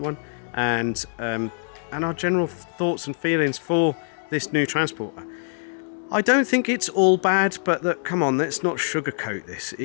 and our general thoughts and feelings for this new Transporter. I don't think it's all bad, but look, come on, let's not sugarcoat this.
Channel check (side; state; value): right; silent; digital silence